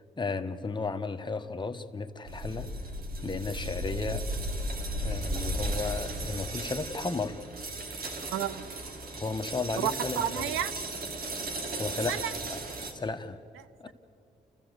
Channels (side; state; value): both; normal; correlation 0.46